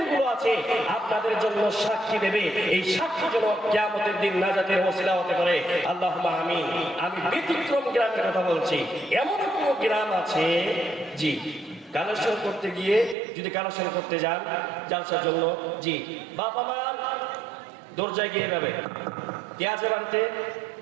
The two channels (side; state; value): left; drops out; at 13.2 s